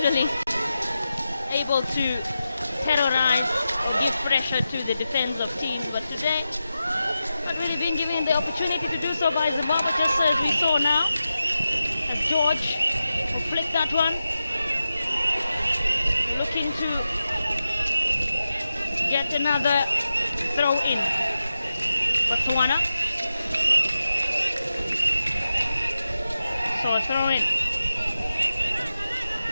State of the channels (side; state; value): both; inverted; correlation -0.91